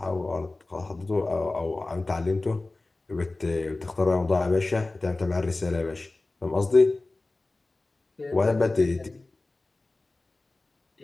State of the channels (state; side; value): quieter; right; 3.1 dB